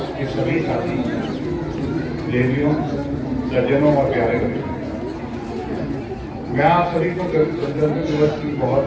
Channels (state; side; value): identical; both; correlation 1.00